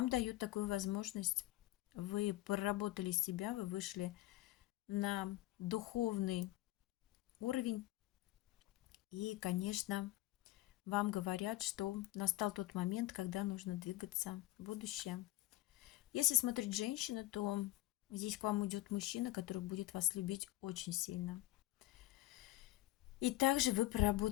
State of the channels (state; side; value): quieter; right; 17.0 dB